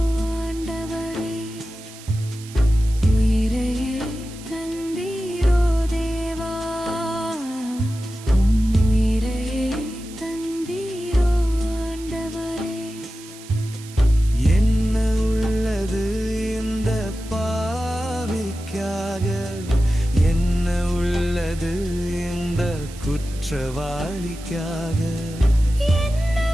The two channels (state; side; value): noise; right; hiss, 18 dB below the sound